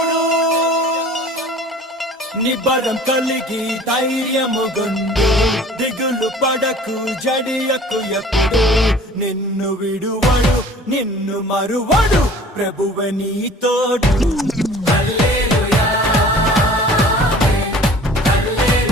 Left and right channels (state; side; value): normal; both; correlation 0.47